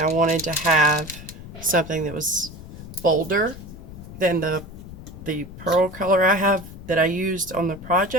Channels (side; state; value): left; noise; rumble, 14 dB below the sound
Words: wanted to have something that was bolder than the pearl color I have that I used on the